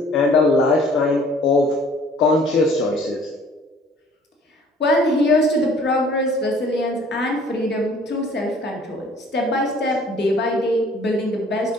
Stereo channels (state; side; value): normal; both; correlation 0.54